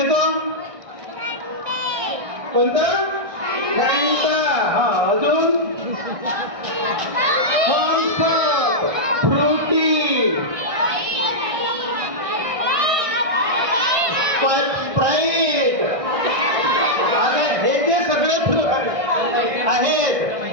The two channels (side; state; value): left; late; 1.6 ms